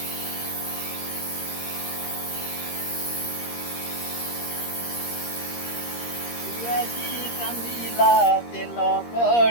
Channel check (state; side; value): late; right; 13 ms